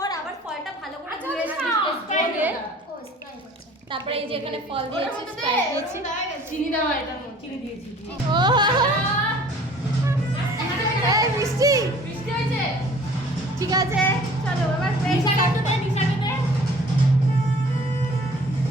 আবার ফলটা ভালো করে ধুয়ে তারপরে এই যে এখানে ফল দিয়েছি, চিনি দেওয়া, এটা চিনি দিয়েছি। ও এই মিষ্টি মিষ্টি হয়েছে, ঠিক আছে চলো এবার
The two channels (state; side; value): normal; both; correlation 0.51